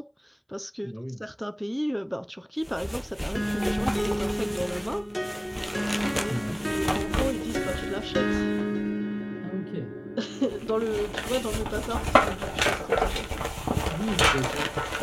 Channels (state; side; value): identical; both; correlation 1.00